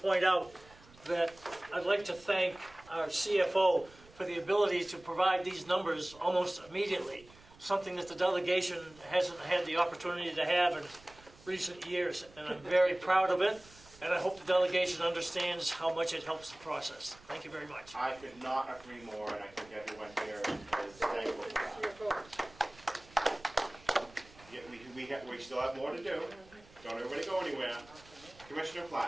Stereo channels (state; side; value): noise; right; rumble, 24 dB below the sound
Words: out that I'd like to thank our CFO for the ability to provide these numbers almost immediately, something that the delegation hasn't had the opportunity to have in recent years, and I'm very proud of it, and I hope the delegation understands how much it helps the process. Thank you very much. I could not agree more, and I think everyone here is thankful for that. Yeah, we still have more to do. Don't everybody go anywhere. Commissioner